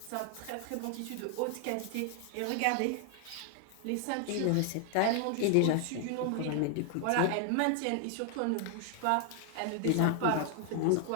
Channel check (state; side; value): different; both; correlation 0.00